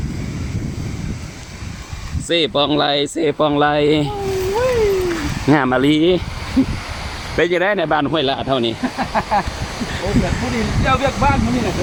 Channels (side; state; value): both; identical; correlation 1.00